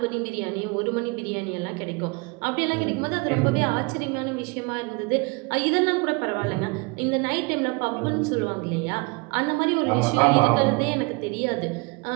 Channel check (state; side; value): quieter; left; 28.1 dB